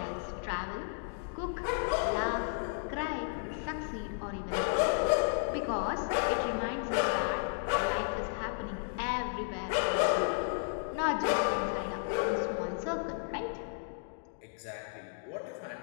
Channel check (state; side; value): silent; right; digital silence